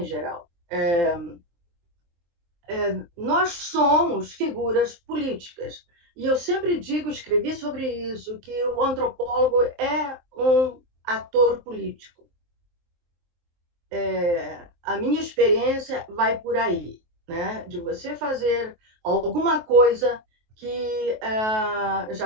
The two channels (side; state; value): left; late; 23 ms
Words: geral. Nós somos figuras políticas. E eu sempre digo, escrevi sobre isso, que o antropólogo é um ator político. A minha experiência vai por aí, né? De você fazer alguma coisa que já